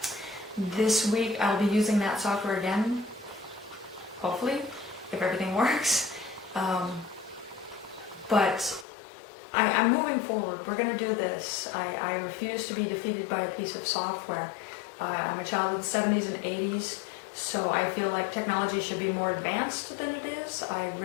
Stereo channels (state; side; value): drops out; right; at 8.8 s